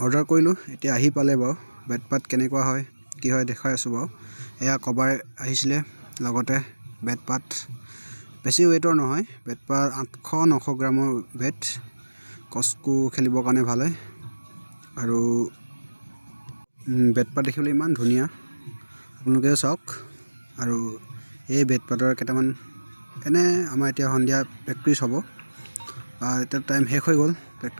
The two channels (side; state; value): both; inverted; correlation -1.00